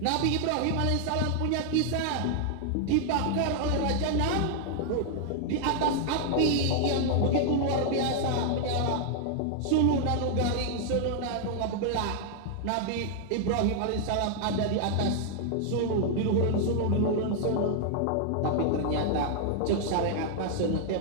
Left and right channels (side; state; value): both; different; correlation 0.00